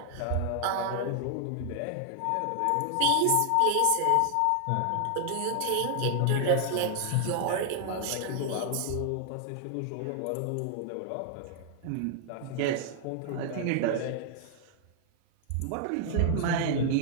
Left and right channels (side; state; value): both; different; correlation 0.00